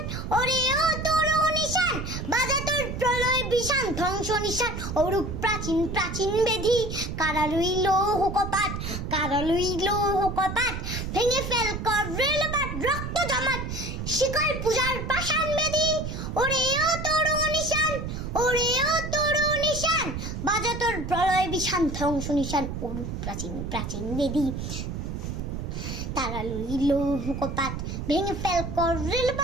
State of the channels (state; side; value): noise; right; rumble, 5 dB below the sound